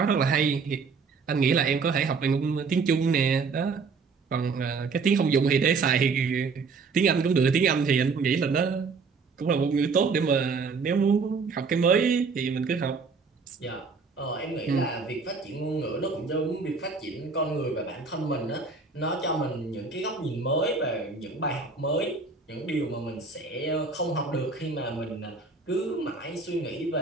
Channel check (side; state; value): left; quieter; 4.7 dB